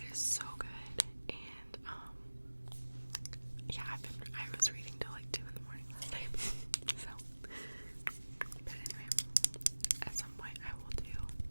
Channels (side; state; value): both; inverted; correlation -1.00